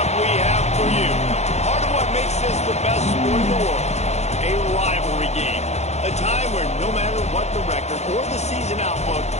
we have for you. Part of what makes this the best sport in the world, a rivalry game. A time where no matter what the record or the season outlook,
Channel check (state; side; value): late; right; 0.32 ms